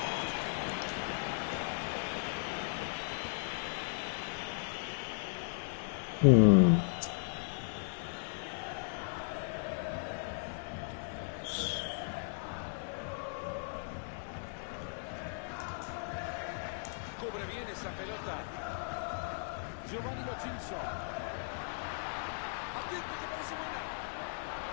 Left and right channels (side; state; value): right; silent; digital silence